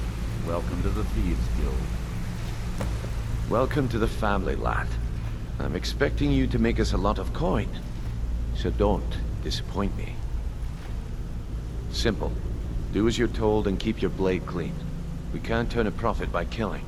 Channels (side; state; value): both; identical; correlation 1.00